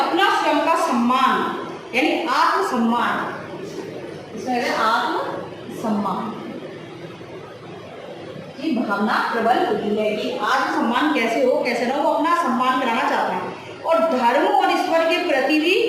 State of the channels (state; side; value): identical; both; correlation 1.00